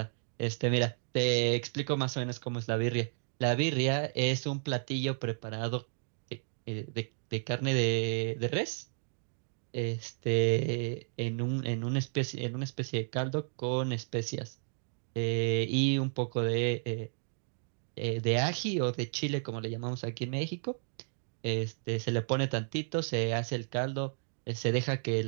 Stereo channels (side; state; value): left; silent; digital silence